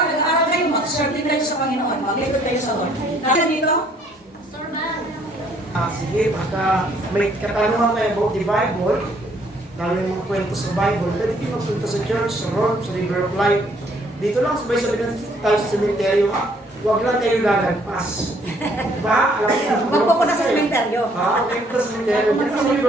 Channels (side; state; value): both; normal; correlation 0.63